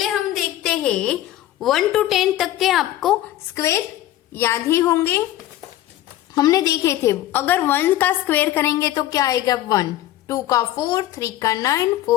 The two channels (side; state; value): right; quieter; 13.8 dB